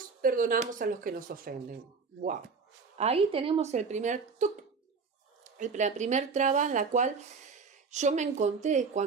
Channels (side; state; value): left; quieter; 5.0 dB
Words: perdonamos a los que nos ofenden. ¡Wow! Ahí tenemos la primer traba en la cual yo me encontré